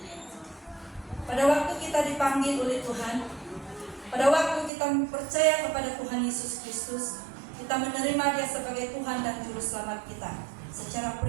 Pada waktu kita dipanggil oleh Tuhan, pada waktu kita percaya kepada Tuhan Yesus Kristus, kita menerima Dia sebagai Tuhan dan Juru Selamat kita secara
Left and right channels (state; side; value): drops out; left; at 4.7 s